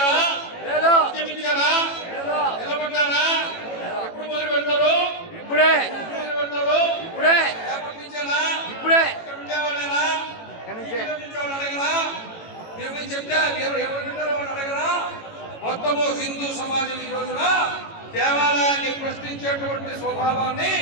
ఉద్యమించారా? నిలబడ్డారా? ఎప్పుడు మొదలు పెడతారు? ఇప్పుడే. మొదలు పెడతారు? ఇప్పుడే. ఏర్పడించారా? ఇప్పుడే. ఉండేవాళ్ళేనా? అడగరా? మీరు చెప్తే ఎవరు వింటారో వాళ్ళు అడగరా? మొత్తము హిందూ సమాజం ఈ రోజున దేవాలయాన్ని ప్రశ్నించేటువంటి స్వభావాన్ని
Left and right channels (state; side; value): late; right; 18 ms